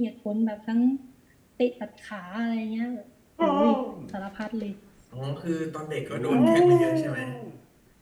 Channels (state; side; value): identical; both; correlation 1.00